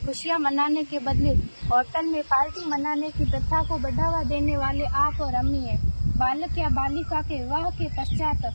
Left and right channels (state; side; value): inverted; both; correlation -1.00